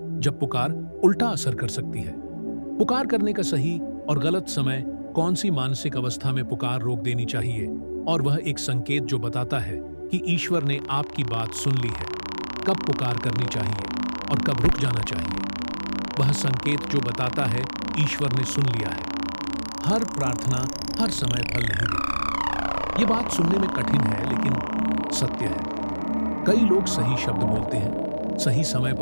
जब पुकार उल्टा असर कर सकती है? पुकार करने का सही और गलत समय, कौन सी मानसिक अवस्था में पुकार रोक देनी चाहिए, और वह एक संकेत जो बताता है कि ईश्वर ने आपकी बात सुन ली है। कब पुकार करनी चाहिए और कब रुक जाना चाहिए, वह संकेत जो बताता है ईश्वर ने सुन लिया है। हर प्रार्थना हर समय फल नहीं देती। ये बात सुनने में कठिन है, लेकिन सत्य है। कई लोग सही शब्द बोलते हैं, सही समय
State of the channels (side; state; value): both; inverted; correlation -1.00